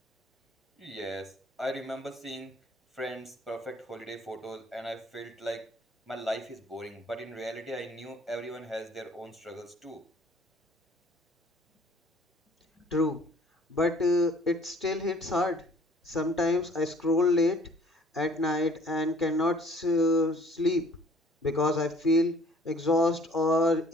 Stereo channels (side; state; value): both; normal; correlation 0.55